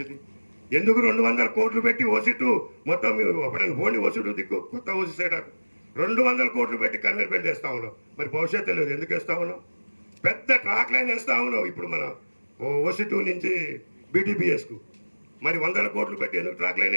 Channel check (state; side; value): inverted; both; correlation -1.00